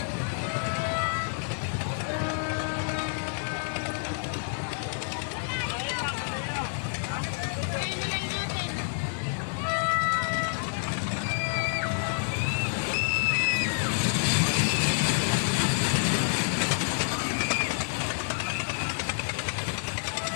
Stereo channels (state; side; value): silent; right; 59 dB below the other